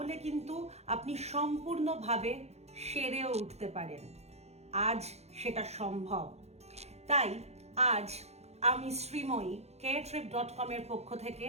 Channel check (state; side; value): late; left; 0.31 ms